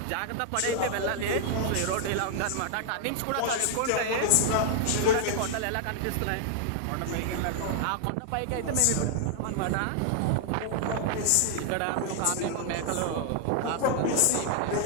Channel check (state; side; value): different; both; correlation 0.00